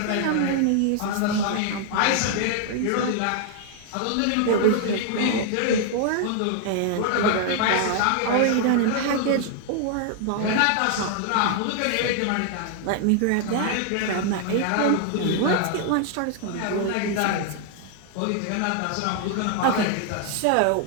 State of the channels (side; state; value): both; different; correlation 0.00